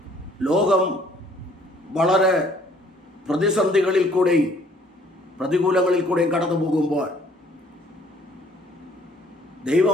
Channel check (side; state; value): both; normal; correlation 0.59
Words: ലോകം വളരെ പ്രതിസന്ധികളിൽ കൂടെയും പ്രതികൂലങ്ങളിൽ കൂടെയും കടന്നു പോകുമ്പോൾ